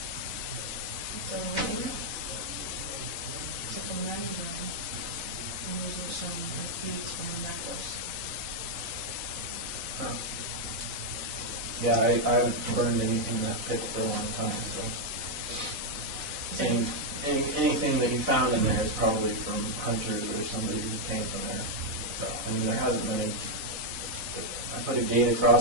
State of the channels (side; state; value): left; late; 4.0 ms